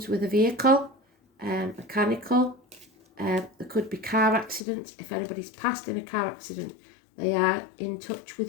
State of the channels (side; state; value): right; drops out; at 4.6 s